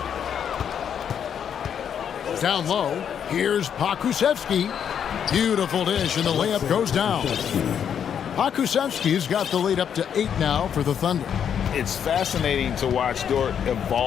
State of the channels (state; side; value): quieter; right; 8.3 dB